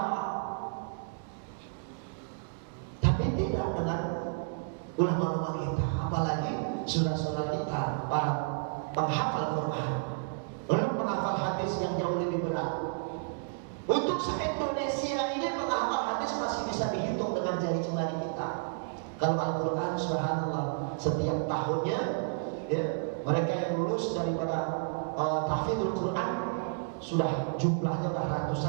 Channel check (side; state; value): left; silent; digital silence